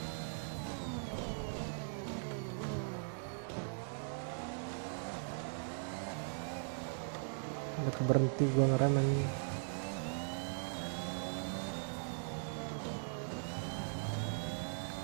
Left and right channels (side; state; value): left; silent; 51 dB below the other